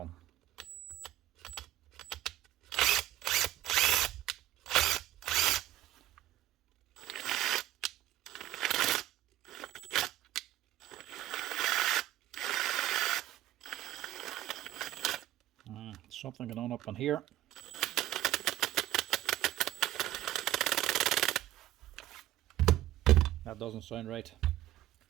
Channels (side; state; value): left; quieter; 14.4 dB